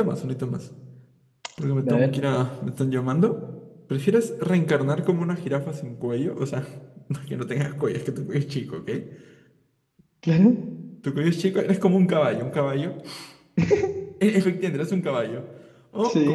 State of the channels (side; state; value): both; identical; correlation 1.00